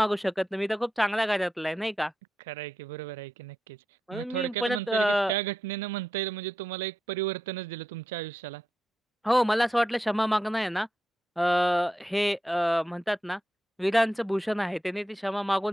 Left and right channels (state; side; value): normal; both; correlation 0.87